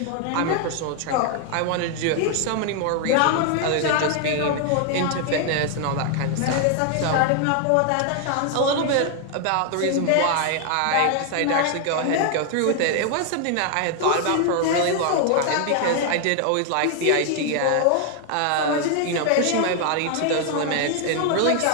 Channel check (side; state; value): both; different; correlation 0.00